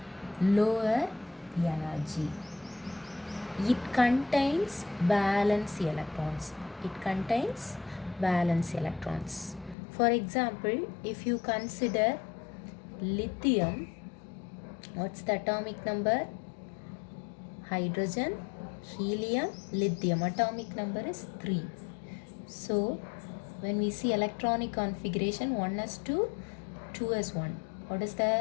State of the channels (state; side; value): drops out; right; at 9.8 s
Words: lower energy. It contains valence electrons. It contains valence electrons. For example, if you consider lithium, what's the atomic number? Hydrogen, helium, lithium. Atomic number is 3. So, when we see electronic configuration, 1s2, 2s1. What is